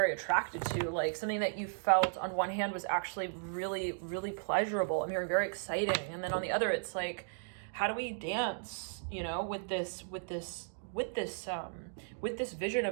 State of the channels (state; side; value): silent; left; digital silence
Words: attracted to, like something that you felt on one hand was actually really, really pleasurable. I'm hearing very exciting, and then on the other, it's like, how do we dance? With this vision